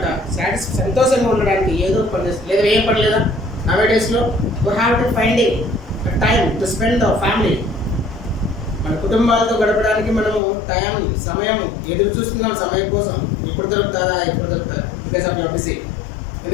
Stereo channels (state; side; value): drops out; right; at 10.4 s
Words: సంతోషంగా ఉండడానికి ఏదో పని చేస్తుంది. లేదా ఏం పని లేదా? నవేడేస్లో we have to finding time to spend our family. మన కుటుంబాలతో గడపడానికి మనము సమయం ఎదురు చూస్తున్నాం సమయం కోసం. ఎప్పుడు దొరుకుతుందా బికాస్ ఆఫ్ యువర్ బిజీ.